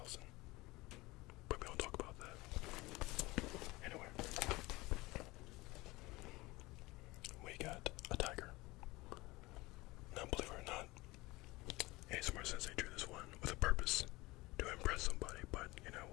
But we don't talk about that. Anyway, we got a tiger. Now, believe it or not, ASMR-SENSEI drew this one with a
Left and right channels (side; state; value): right; quieter; 21.3 dB